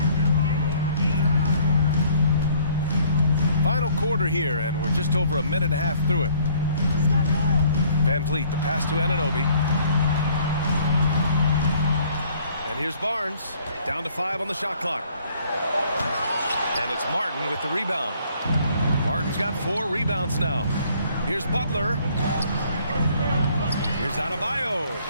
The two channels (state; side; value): inverted; both; correlation -0.59